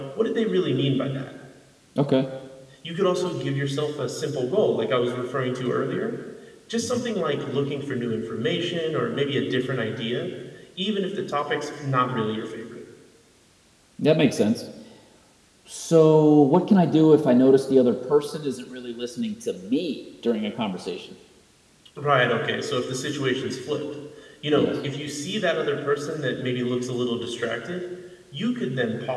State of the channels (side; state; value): both; identical; correlation 1.00